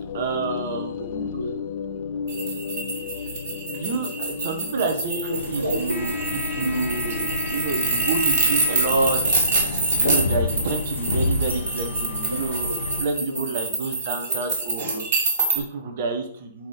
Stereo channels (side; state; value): both; inverted; correlation -0.52